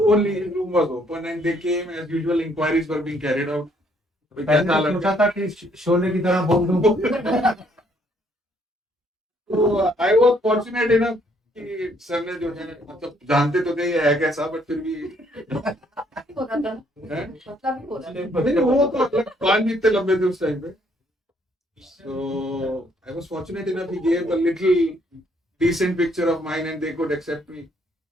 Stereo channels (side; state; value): both; normal; correlation 0.67